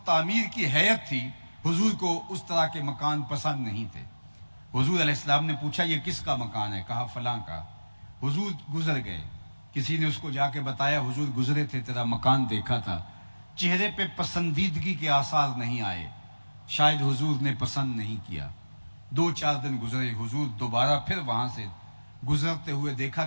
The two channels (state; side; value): inverted; both; correlation -1.00